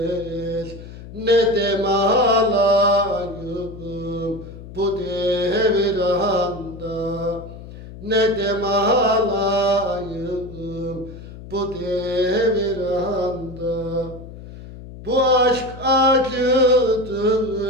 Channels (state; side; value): noise; left; hum, 14 dB below the sound